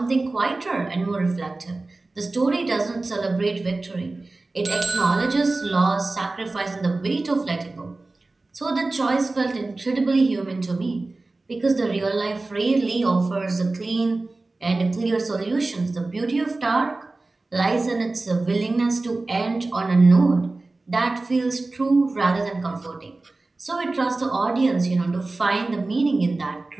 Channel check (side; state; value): left; quieter; 3.2 dB